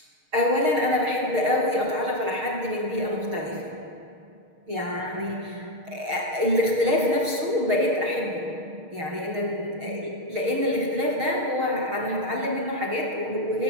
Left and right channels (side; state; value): left; late; 6.4 ms